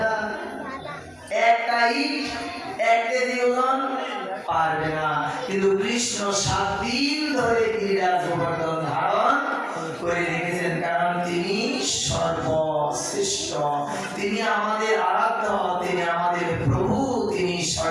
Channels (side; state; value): both; identical; correlation 1.00